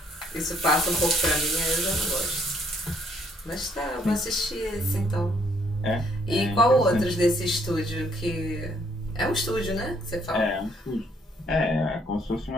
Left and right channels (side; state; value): both; normal; correlation 0.67